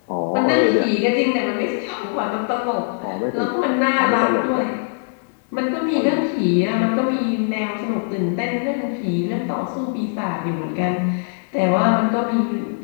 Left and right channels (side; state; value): right; silent; digital silence